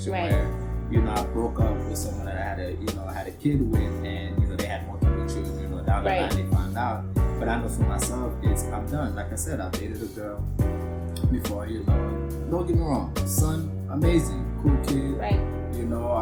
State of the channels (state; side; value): identical; both; correlation 1.00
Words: where, I broke up with someone that I had a kid with, and they had multiple children. Down the line they found out. But I know for myself, I'm done. Like I said, I dated a girl before. Don't get me wrong, son, amazing, cool kid. Right.